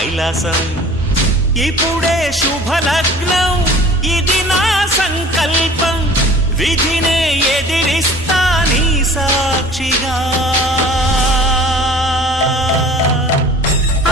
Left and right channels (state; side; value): normal; both; correlation 0.46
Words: ఇప్పుడే శుభలగ్నం ఇది నా సంకల్పం, విధినే ఎదిరిస్తా నీ సాక్షిగా.